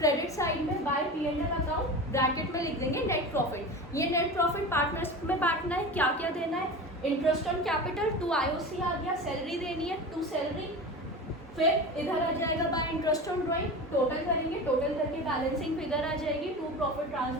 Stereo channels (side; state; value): both; normal; correlation 0.30